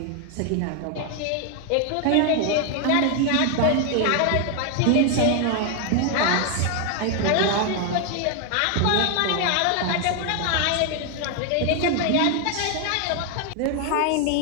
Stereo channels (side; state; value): both; different; correlation 0.00